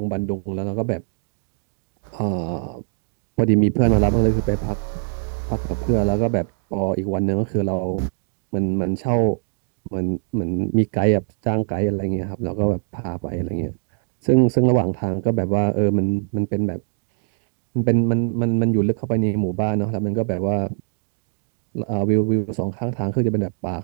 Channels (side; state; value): left; silent; digital silence